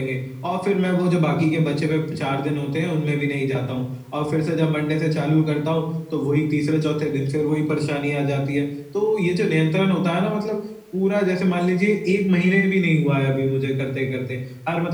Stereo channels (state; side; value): identical; both; correlation 1.00